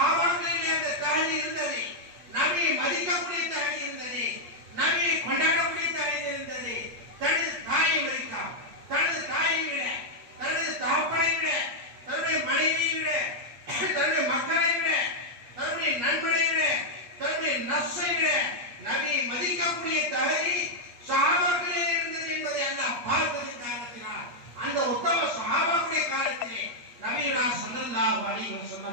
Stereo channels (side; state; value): left; late; 8.3 ms